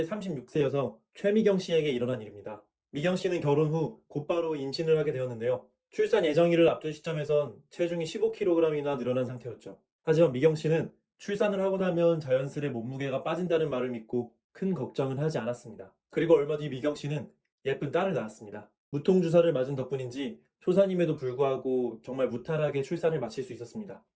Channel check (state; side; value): identical; both; correlation 1.00